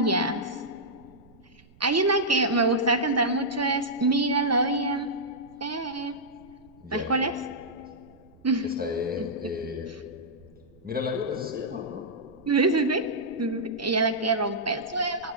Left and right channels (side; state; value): right; noise; rumble, 27 dB below the sound